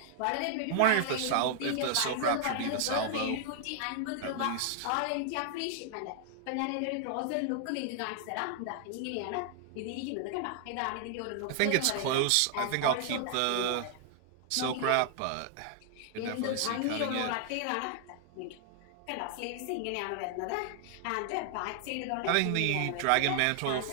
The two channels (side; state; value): both; different; correlation -0.01